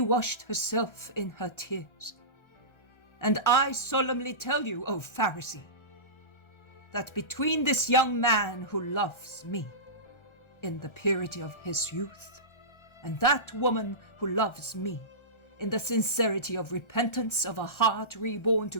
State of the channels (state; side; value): late; right; 1.3 ms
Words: washed herself in her tears, and I solemnly tell you, O Pharisee, that between this young man who loves me in the purity of his youth, and that woman who loves me in the sincerity of repentance of a heart reborn